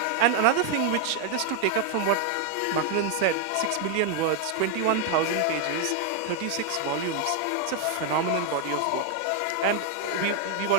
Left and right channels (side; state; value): both; different; correlation 0.00